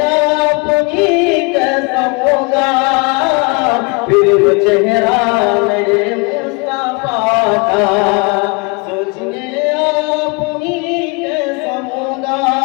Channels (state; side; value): quieter; right; 30.4 dB